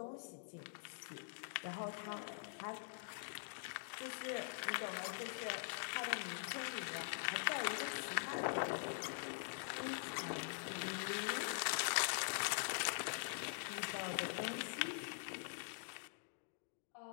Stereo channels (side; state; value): right; silent; digital silence